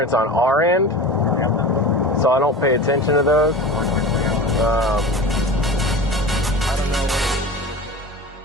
on our end, so I don't pay attention to those.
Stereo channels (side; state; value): both; normal; correlation 0.33